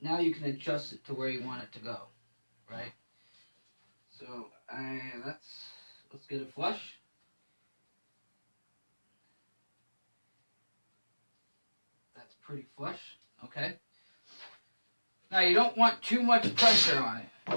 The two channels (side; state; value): both; inverted; correlation -1.00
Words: you can adjust it to where you want it to go, right? So, let's get it flush. That's pretty flush, okay? Now, you don't want too much pressure on it.